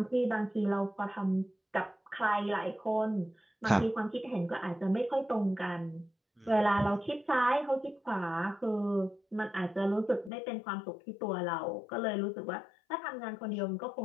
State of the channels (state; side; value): drops out; right; at 10.3 s